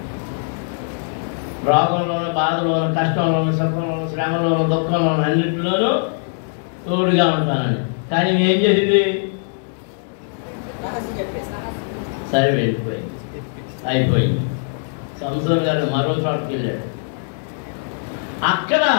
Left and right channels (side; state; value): right; silent; 65 dB below the other